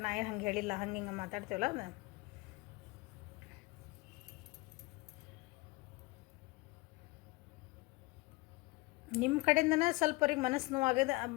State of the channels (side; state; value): right; quieter; 22.9 dB